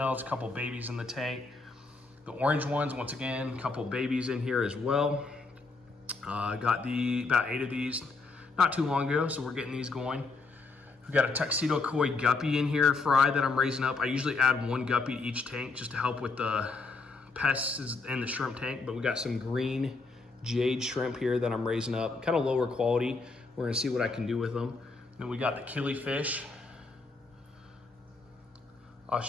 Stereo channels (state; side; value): quieter; right; 3.9 dB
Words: a couple babies in the tank. The orange ones, once again, a couple babies in here as well. Got about 8 of these not too long ago, so we're getting these going. We got a tuxedo koi guppy in here, fry, that I'm raising up. I usually add 1 guppy to each tank just to help with the pests in the shrimp tank, but we got some green jade shrimp here that I'm raising up, kind of lower quality. We're gonna see what I can do with them. Then we got the killifish,